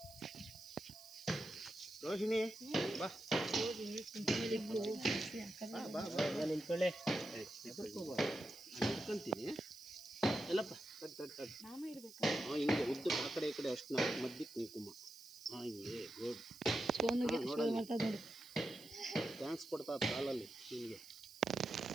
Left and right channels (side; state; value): right; noise; hiss, 19 dB below the sound